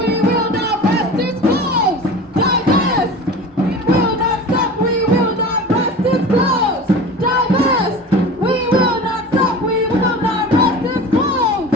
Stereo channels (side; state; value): both; normal; correlation 0.35